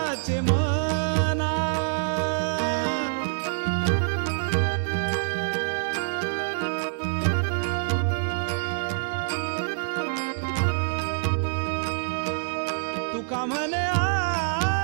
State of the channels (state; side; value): silent; left; digital silence